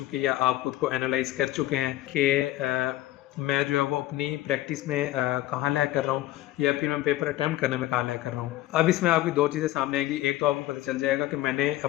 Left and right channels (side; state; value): right; quieter; 15.8 dB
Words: है, आप खुद को एनालाइज कर चुके हैं कि मैं जो है वो अपनी प्रैक्टिस में कहाँ लैग कर रहा हूँ, या फिर मैं पेपर अटैम्प्ट करने में कहाँ लैग कर रहा हूँ। अब इसमें आपकी 2 चीज़ें सामने आएंगी। एक तो आपको पता चल जाएगा कि मैंने